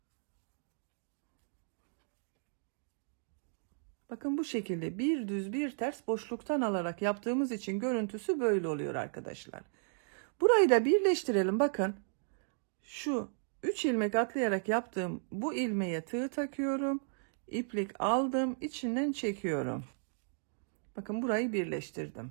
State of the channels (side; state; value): left; silent; digital silence